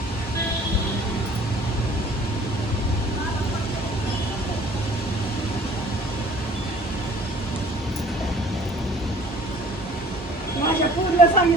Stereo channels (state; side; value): normal; both; correlation 0.51